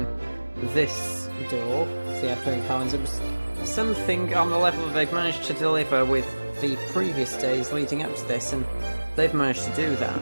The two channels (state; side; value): inverted; both; correlation -1.00